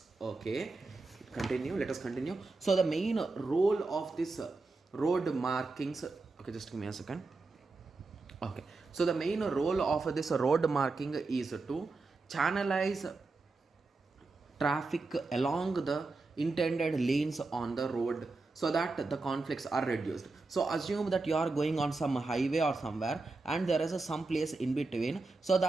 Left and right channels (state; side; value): quieter; left; 3.6 dB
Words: Okay, let us continue. So the main role of this road markings, okay, just give me a second. Okay, so the main role of this road marking is to channelize traffic along the intended lanes on the road so that the conflicts are reduced. So assume that you are going on some highway or somewhere and there is some place in between, so